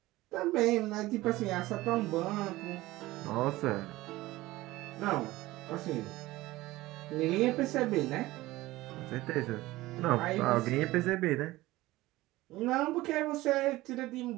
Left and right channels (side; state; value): left; quieter; 18.2 dB